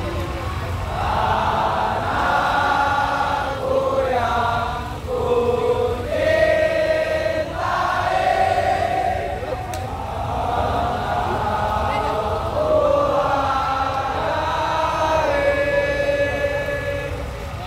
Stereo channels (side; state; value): both; identical; correlation 1.00